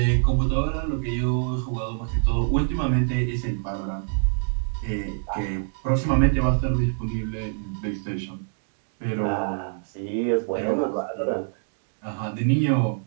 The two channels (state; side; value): silent; left; 62 dB below the other